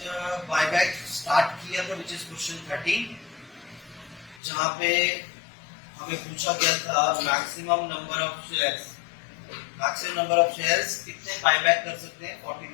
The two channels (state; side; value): drops out; right; at 4.4 s